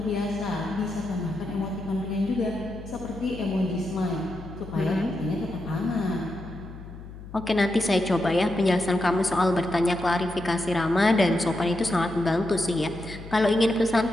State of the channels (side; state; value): left; noise; hum, 14 dB below the sound